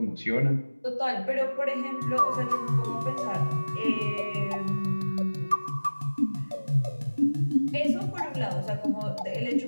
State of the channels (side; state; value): both; inverted; correlation -1.00